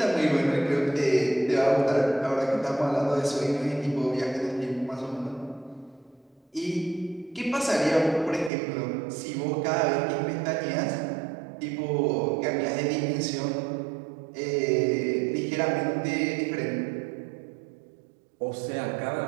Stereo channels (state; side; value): drops out; left; at 8.5 s